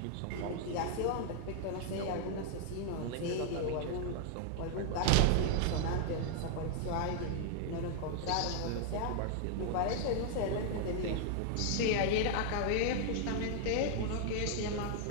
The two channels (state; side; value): different; both; correlation 0.00